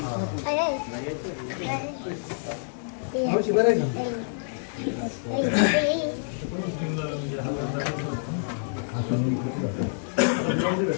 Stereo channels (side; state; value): right; silent; digital silence